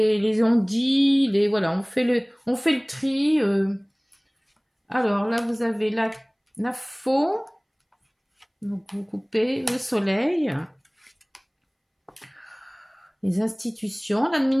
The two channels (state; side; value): identical; both; correlation 1.00